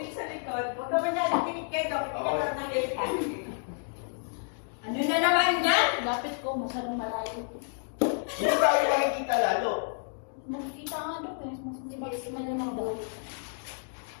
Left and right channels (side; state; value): right; silent; 58 dB below the other